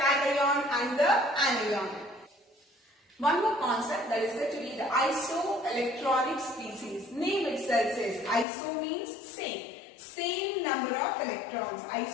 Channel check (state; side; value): drops out; right; at 8.5 s